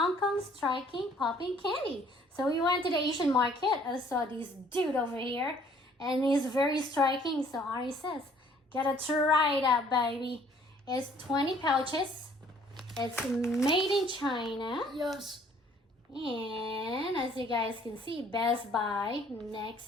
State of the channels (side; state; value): both; normal; correlation 0.59